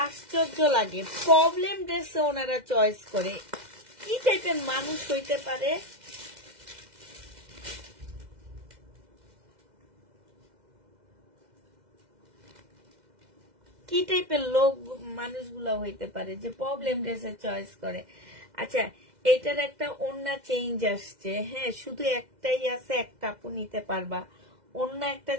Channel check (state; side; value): late; left; 2.0 ms